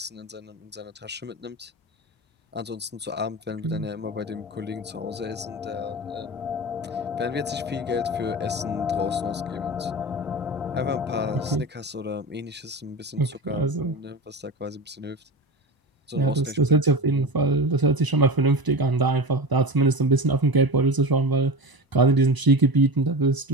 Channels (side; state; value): both; normal; correlation 0.26